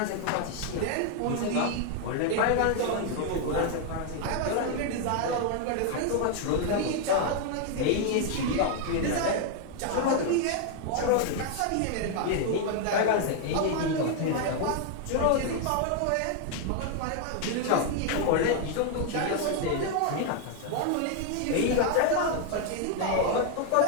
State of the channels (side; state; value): both; different; correlation 0.00